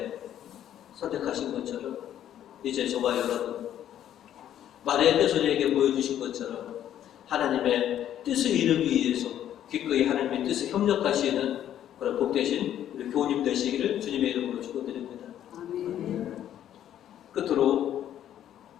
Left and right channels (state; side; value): quieter; right; 11.0 dB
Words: 선택하신 것처럼 이제 저와 여러분 마리아께서 우리에게 보여주신 것처럼 하나님의 뜻을 이루기 위해서 기꺼이 하나님의 뜻에 협력하시는 그런 복되신 우리 교우님 되시기를 주님의 이름으로 축원드립니다. 끝으로